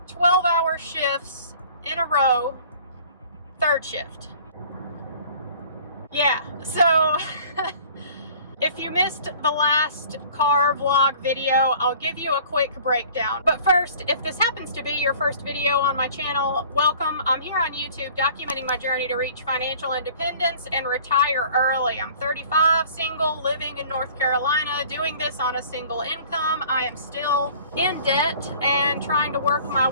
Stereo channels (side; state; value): both; inverted; correlation -0.49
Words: 12-hour shifts in a row, third shift. Yeah, so if you missed the last car vlog video, I'll give you a quick breakdown. But first, if this happens to be your first video on my channel, welcome. I'm here on YouTube documenting my journey to reach financial independence and retire early. I'm 35, single, living in North Carolina, doing this on a single income. I am still in debt and trying to work my